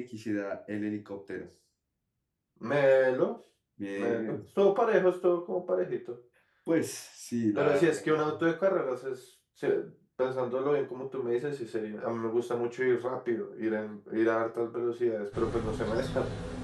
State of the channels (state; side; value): identical; both; correlation 1.00